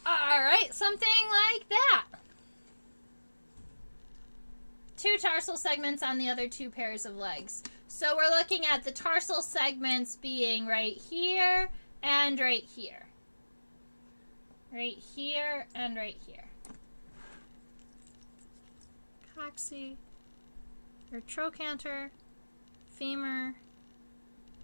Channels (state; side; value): inverted; both; correlation -1.00